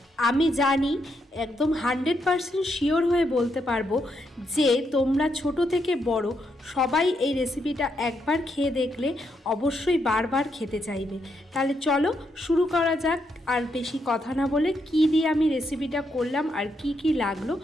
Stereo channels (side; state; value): both; normal; correlation 0.79